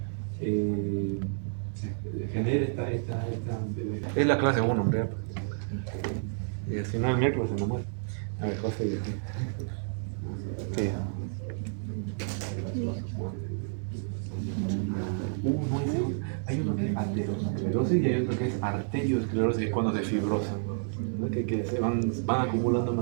genere esta es la clase 1, hombre. Y si no, el miércoles se me muere. A ver, José. Sí. No, hay uno que es aterosclerosis y hay otro que es arteriosclerosis, que es cuando se fibrosa, ¿no? Que se van acumulando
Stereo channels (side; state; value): left; silent; 58 dB below the other